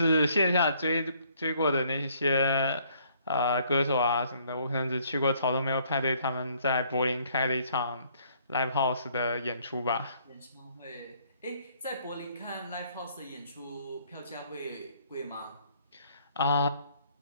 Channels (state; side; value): inverted; both; correlation -0.64